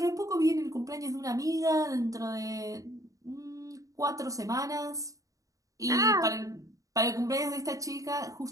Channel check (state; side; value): late; left; 0.16 ms